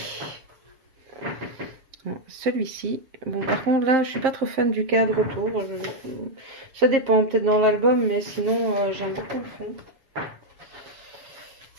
celui-ci. Bon, par contre, là, je suis pas trop fan du cadre autour. Ça dépend, peut-être dans l'album, mais sinon, j'aime beaucoup le fond.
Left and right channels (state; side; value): late; left; 7.4 ms